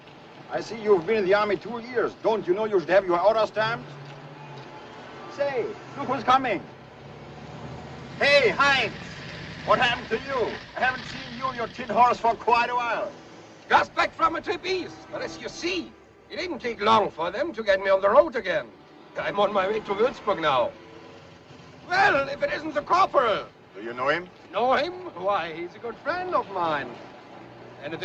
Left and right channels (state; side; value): identical; both; correlation 1.00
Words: I see you've been in the army 2 years. Don't you know you should have your order stamped? Say, look who's coming. Hey, Heinz! What happened to you? I haven't seen you and your tin horse for quite a while. Just back from a trip east. But as you see, it didn't take long for them to get me on the road again. I'm on my way to Würzburg now. Well, if it isn't the corporal. Do you know him? Know him? Why, he's a good friend of mine.